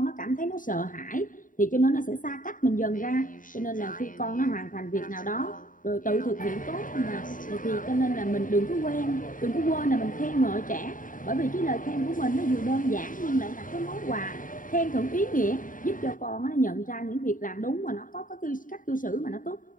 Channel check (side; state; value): right; late; 0.39 ms